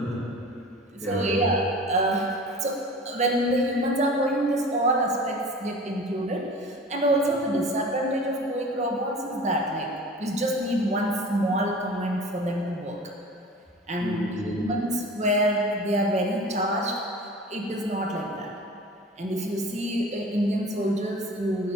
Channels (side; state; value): both; normal; correlation 0.40